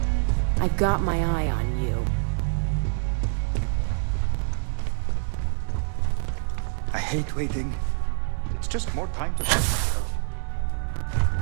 I've got my eye on you. I hate waiting. It's just more time to...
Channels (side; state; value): left; silent; digital silence